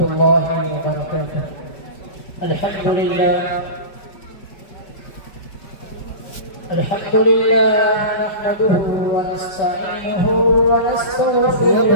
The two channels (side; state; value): right; late; 5.2 ms